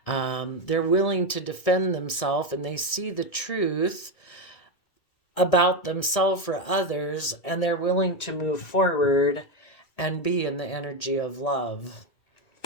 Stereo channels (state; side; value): late; right; 1.7 ms